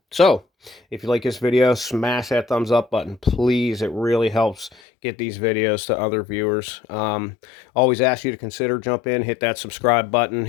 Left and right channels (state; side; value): drops out; right; at 4.8 s